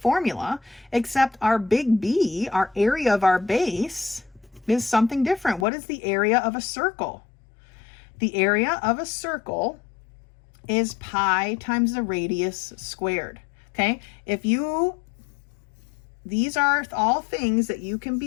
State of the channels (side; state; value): right; drops out; at 5.7 s